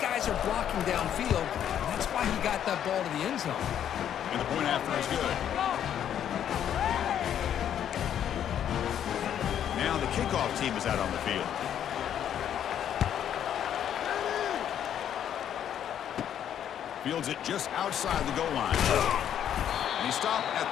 are blocking downfield, and that's why he got that ball to the end zone. And the point after is good. Now the kickoff team is out on the field. Fields it just outside the goal line. And he stopped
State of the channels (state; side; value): quieter; right; 9.8 dB